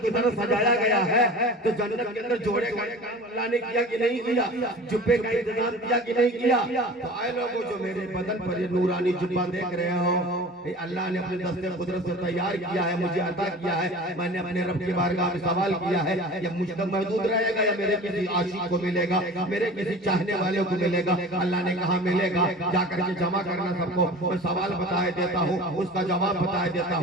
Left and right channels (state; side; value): normal; both; correlation 0.38